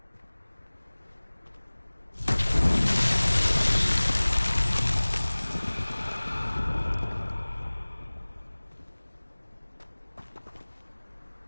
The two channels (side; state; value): both; inverted; correlation -1.00